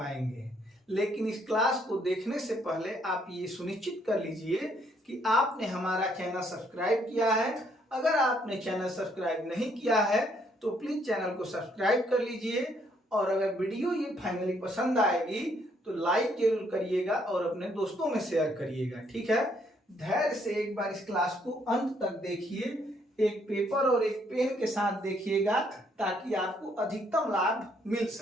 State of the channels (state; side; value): normal; both; correlation 0.69